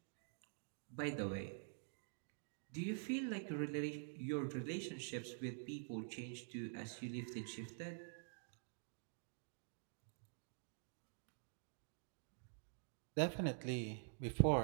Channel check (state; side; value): silent; left; digital silence